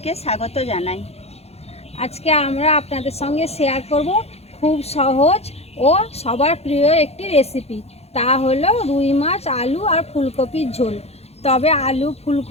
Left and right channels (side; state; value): right; late; 0.30 ms